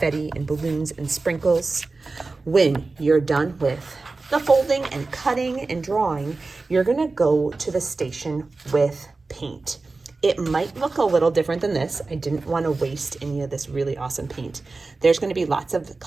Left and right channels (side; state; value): left; quieter; 3.7 dB